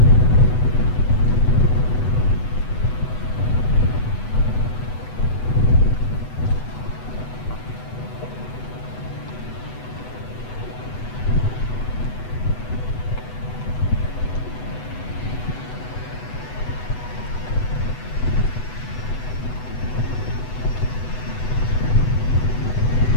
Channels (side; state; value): right; late; 8.0 ms